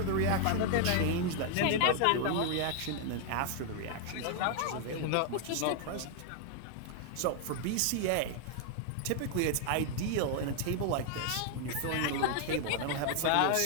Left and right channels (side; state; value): both; different; correlation 0.00